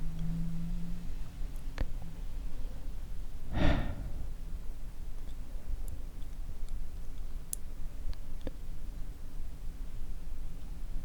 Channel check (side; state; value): both; identical; correlation 1.00